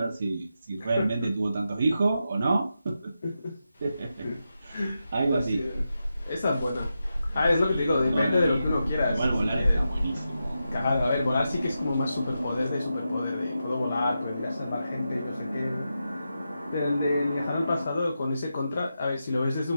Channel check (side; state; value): both; inverted; correlation -0.88